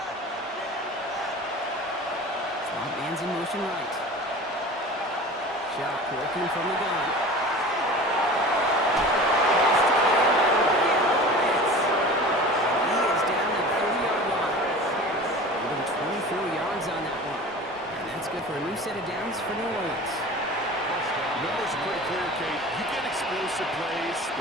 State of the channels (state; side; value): normal; both; correlation 0.38